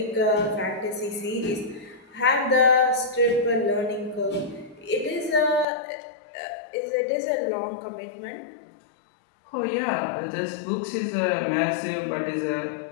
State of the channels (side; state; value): right; drops out; at 5.7 s